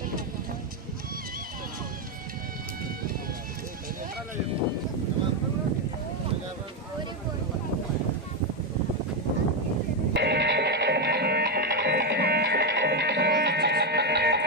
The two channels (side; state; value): both; normal; correlation 0.06